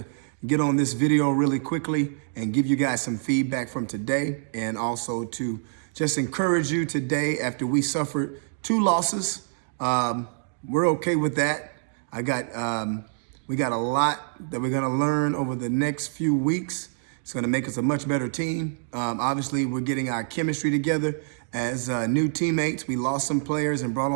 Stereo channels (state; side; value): silent; left; digital silence